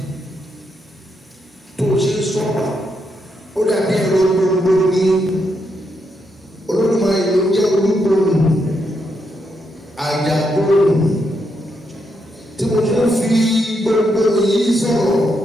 tó ṣe sọ̀rọ̀ ó dàbí ẹ̀rọ gbogbo ní Olódùmarè ló jẹ́ olúgbòrò àjàgbòrò tí mo tún fi gbogbo yìí sọ̀rọ̀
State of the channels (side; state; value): both; normal; correlation 0.80